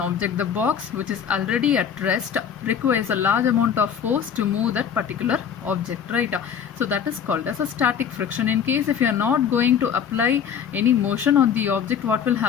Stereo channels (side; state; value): right; quieter; 7.9 dB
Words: the box which is already at rest requires a large amount of force to move that particular object, right? So that is called as a static friction. In case if you are not going to apply any motion on the object, what will